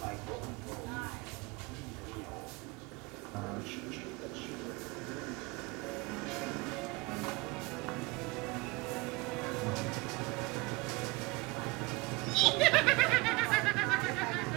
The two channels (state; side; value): quieter; left; 24.0 dB